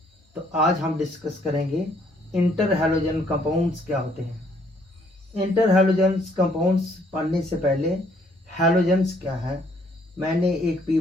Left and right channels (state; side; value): normal; both; correlation 0.66